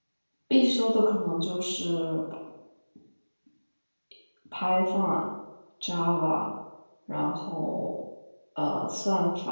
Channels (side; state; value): both; inverted; correlation -1.00